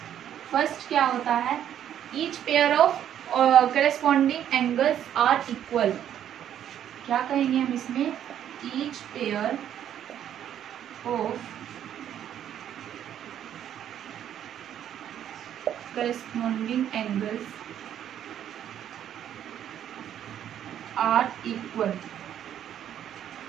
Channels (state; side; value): quieter; left; 10.3 dB